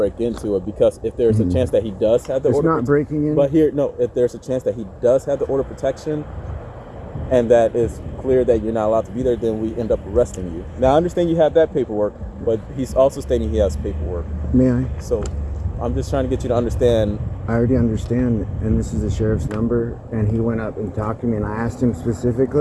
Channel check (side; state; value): both; identical; correlation 1.00